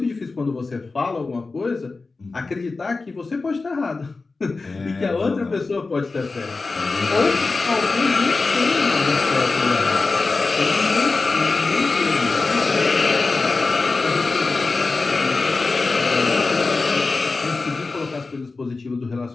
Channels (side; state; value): right; quieter; 3.8 dB